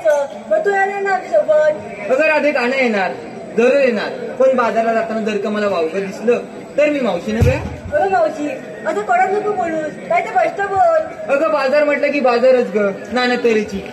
मथुराला ना सोबत. अगं राधे, का नाही येणार, जरूर येणार, पण बाजाराला जाताना जर का मला वावगं दिसलं तर मी मावशीने बया. अगं मावशी, असं कडक नको बोलूस, काय ते स्पष्ट बोल. अगं बाजार म्हटलं की बाजारच ग, नाना तऱ्हेची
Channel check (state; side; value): identical; both; correlation 1.00